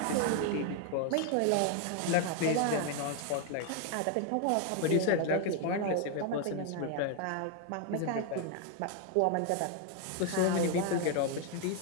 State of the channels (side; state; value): both; different; correlation 0.00